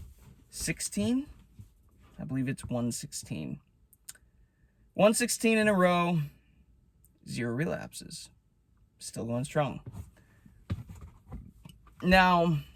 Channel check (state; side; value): identical; both; correlation 1.00